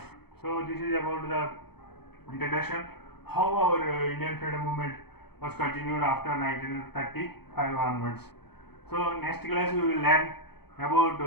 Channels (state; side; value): late; right; 0.97 ms